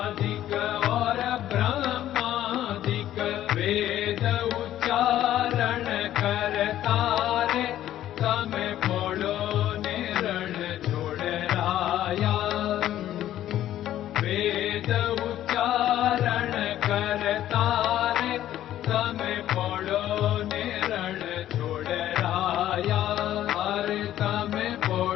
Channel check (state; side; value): quieter; right; 12.5 dB